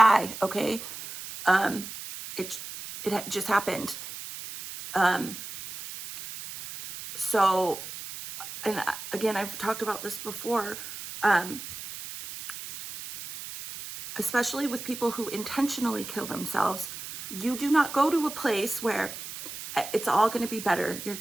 okay? Um, it just happened. Um, so, and again, I've talked about this before, um, especially with people who intentionally kill themselves. You do not go to a place where it's all going to be better. You're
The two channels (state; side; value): noise; right; hiss, 10 dB below the sound